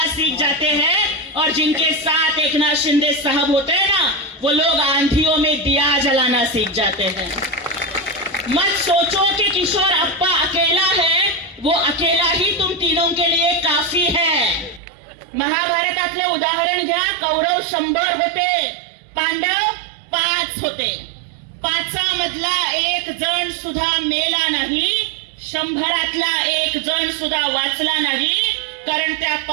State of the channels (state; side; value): drops out; left; at 14.8 s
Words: सीख जाते हैं. और जिनके साथ एकनाथ शिंदे साहब होते हैं ना वो लोग आंधियों में दिया जलाना सीख जाते हैं. मत सोचो कि किशोरप्पा अकेला है, वो अकेला ही तुम तीनों के लिए काफी है. महाभारतातले उदाहरण घ्या. कौरव 100 होते, पांडव 5 होते. 5 मधला 1 जण सुद्धा मेला नाही, 100तला 1 जण सुद्धा वाचला नाही. कारण त्या